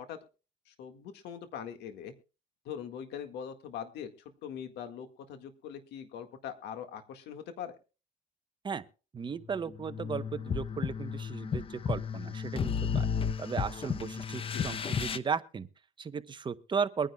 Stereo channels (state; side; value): normal; both; correlation 0.48